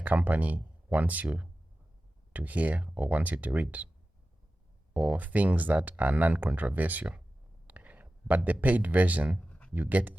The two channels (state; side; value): normal; both; correlation 0.95